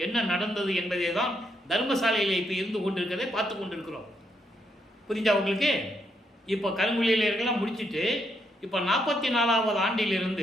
என்ன நடந்தது என்பதை தான் தர்மசாலையில் இப்போ இருந்து கொண்டிருக்கிறதை பார்த்து கொண்டிருக்கிறோம். புரிஞ்சா உங்களுக்கு? இப்போ கருங்குழியிலாம் முடிச்சுட்டு இப்போ 44வது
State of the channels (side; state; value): both; normal; correlation 0.77